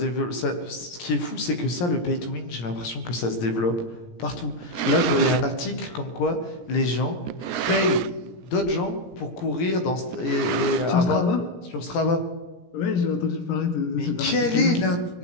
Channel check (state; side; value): late; right; 17 ms